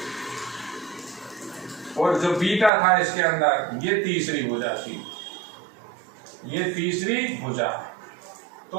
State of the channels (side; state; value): left; drops out; at 2.7 s